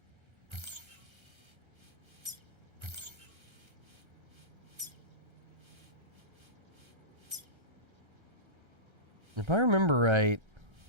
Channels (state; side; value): late; left; 1.3 ms